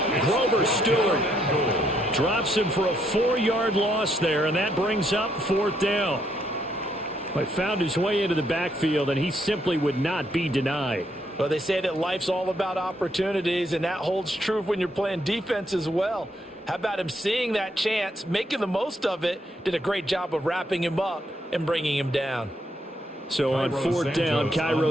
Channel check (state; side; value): normal; both; correlation 0.74